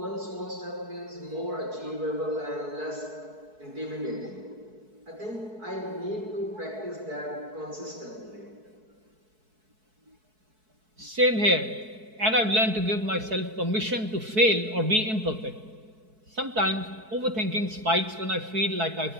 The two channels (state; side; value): late; left; 4.6 ms